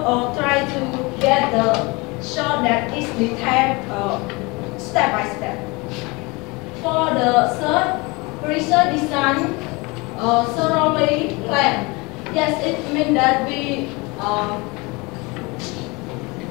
or try to get the shot that is detailed step by step. For the third, research design thoroughly planned. Yes, it means that we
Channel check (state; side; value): quieter; right; 25.9 dB